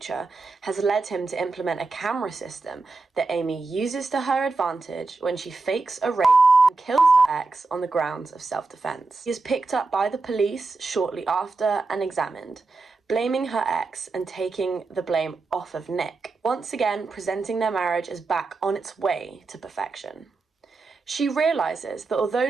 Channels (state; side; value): quieter; left; 3.7 dB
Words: has led him to implement a camera system that Amy uses to her advantage when she fakes a rape and kills her ex on the grounds of self-defense. He is picked up by the police shortly after and examined, blaming her ex and taking the blame off of Nick, once again presenting their marriage as back on its way to perfection. She realizes that although